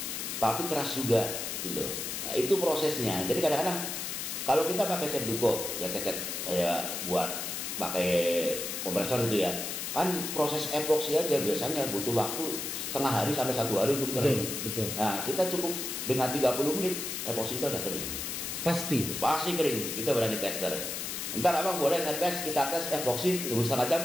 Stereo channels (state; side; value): noise; left; hiss, 4 dB below the sound